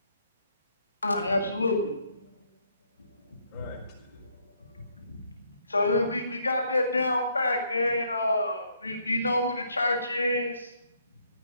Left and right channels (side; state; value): both; inverted; correlation -0.70